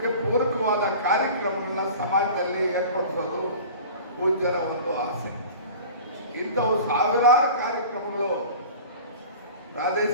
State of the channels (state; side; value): inverted; both; correlation -0.40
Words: ಪೂರಕವಾದ ಕಾರ್ಯಕ್ರಮಗಳನ್ನ ಸಮಾಜದಲ್ಲಿ ಏರ್ಪಡಿಸೋದು ಪೂಜ್ಯರ ಒಂದು ಆಸೆ. ಇಂಥವು ಸಾವಿರಾರು ಕಾರ್ಯಕ್ರಮಗಳು